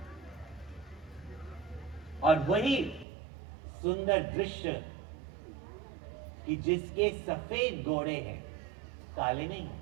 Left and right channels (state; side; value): drops out; left; at 3.1 s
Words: और वही सुंदर दृश्य कि जिसके सफेद घोड़े हैं, काले नहीं,